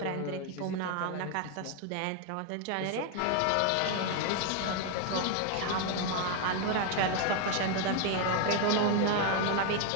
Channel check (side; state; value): both; different; correlation 0.01